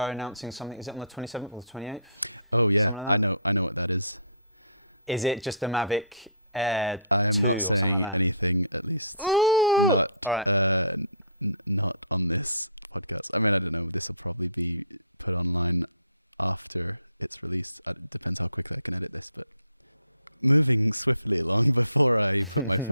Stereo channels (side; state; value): both; inverted; correlation -0.56